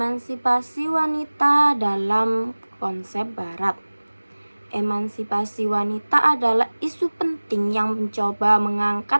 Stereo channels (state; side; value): inverted; both; correlation -1.00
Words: wanita dalam konsep Barat? Emansipasi wanita adalah isu penting yang mencoba